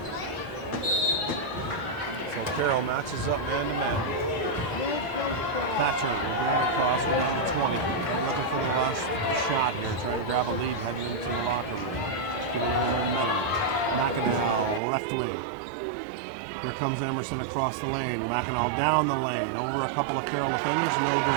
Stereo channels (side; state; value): left; drops out; at 14.8 s